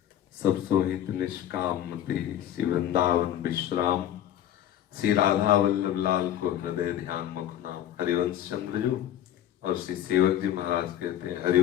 सब सोहित निष्काम मति श्री वृंदावन विश्राम, श्री राधा वल्लभ लाल को हृदय ध्यान मुख नाम। हरिवंश चंद्र जो और श्री सेवक जी महाराज कहते हैं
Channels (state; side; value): quieter; right; 11.4 dB